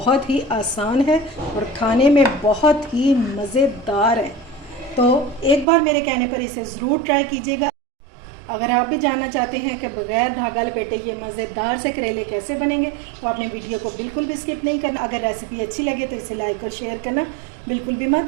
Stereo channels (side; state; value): left; drops out; at 5.7 s